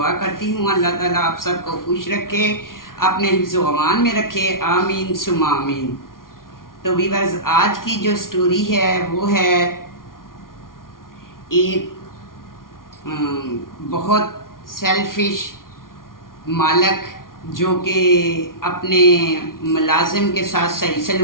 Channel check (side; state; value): right; late; 0.91 ms